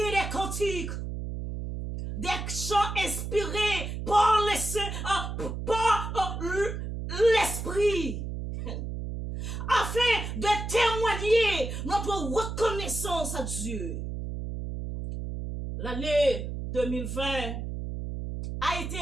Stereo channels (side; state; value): right; noise; hum, 5 dB below the sound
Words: des cantiques, des chants inspirés par l'esprit, afin de témoigner notre reconnaissance à Dieu. L'année 2020 a été